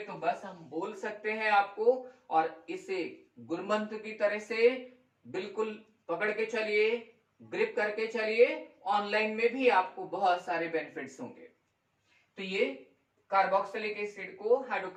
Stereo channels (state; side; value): identical; both; correlation 1.00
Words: तो बस हम बोल सकते हैं आपको, और इसे गुरमंत्र की तरह से बिल्कुल पकड़ के चलिए, ग्रिप करके चलिए, ऑनलाइन में भी आपको बहुत सारे बेनिफिट्स होंगे। तो ये कार्बोक्सिलिक एसिड को